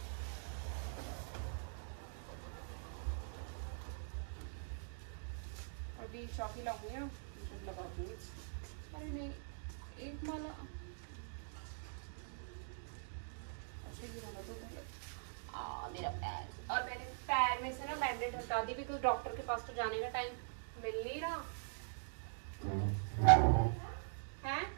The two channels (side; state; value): left; silent; digital silence